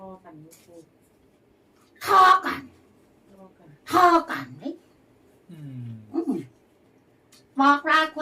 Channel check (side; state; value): both; identical; correlation 1.00